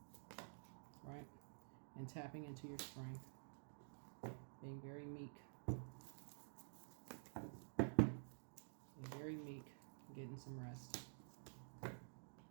right? And tapping into your strength. Being very meek. Being very meek. Getting some rest.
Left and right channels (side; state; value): left; silent; digital silence